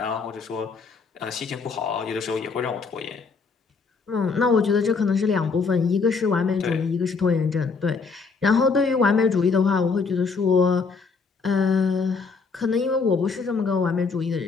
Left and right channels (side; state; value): right; quieter; 4.8 dB